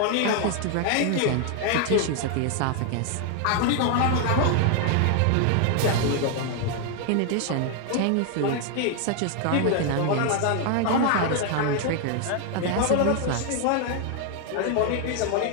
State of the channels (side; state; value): both; different; correlation 0.00